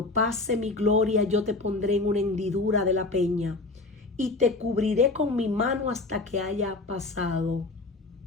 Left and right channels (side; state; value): right; quieter; 3.2 dB